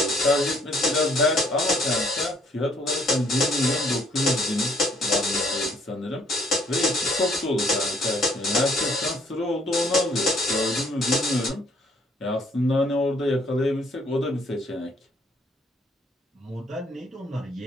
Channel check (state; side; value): normal; both; correlation 0.64